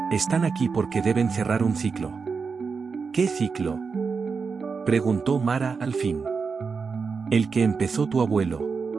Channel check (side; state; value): left; quieter; 5.2 dB